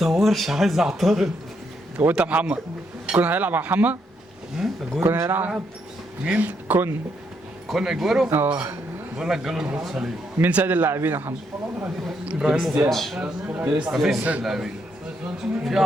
عايز اعترض. هو انت محمد كنا هيلعب مع محمد؟ كنا هيلعب مين؟ كون اجويرو؟ بقول لك جاله الرباط صليبي. مين سيد اللاعبين يا محمد؟ ابراهيموفيتش. مفيش سيد لاعبين، في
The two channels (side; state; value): both; normal; correlation 0.76